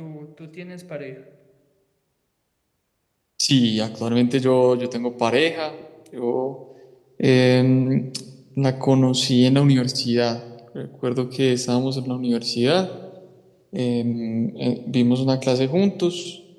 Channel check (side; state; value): both; identical; correlation 1.00